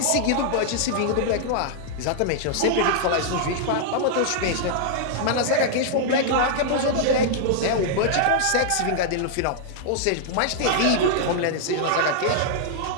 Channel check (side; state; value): both; different; correlation -0.01